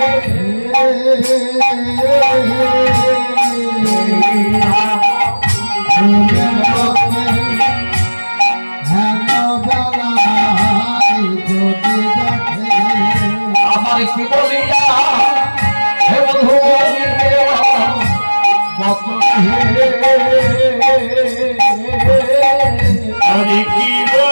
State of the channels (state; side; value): inverted; both; correlation -1.00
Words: কি বলিয়া হে বন্ধু আমি কি